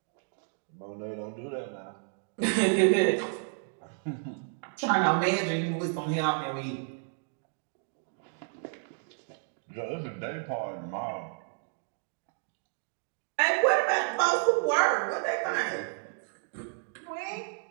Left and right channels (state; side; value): silent; left; 57 dB below the other